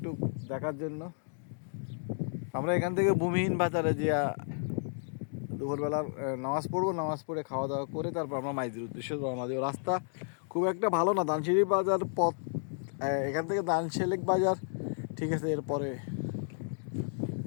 দেখার জন্য। আমরা এখান থেকে ভূমিহীন বাজারে যা দুপুরবেলা নামাজ পড়বো, নামাজ পড়ে খাওয়া দাওয়া করে তারপর আমরা মাইজের উদ্দেশ্যে রওনা দেবো। রাস্তা খুব একটা ভালো না, দানসিঁড়ি বাজার পথ, এখান থেকে দানশেলেক বাজার ঠিক আছে। এরপরে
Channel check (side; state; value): right; silent; digital silence